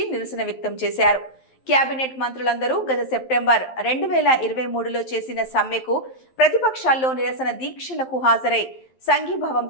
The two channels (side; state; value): right; late; 11 ms